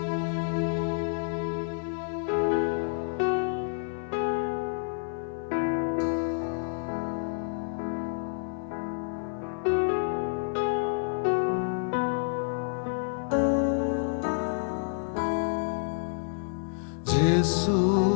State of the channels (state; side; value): silent; right; 59 dB below the other